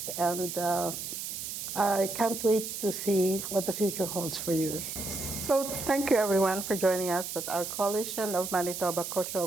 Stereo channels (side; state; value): right; noise; hiss, 6 dB below the sound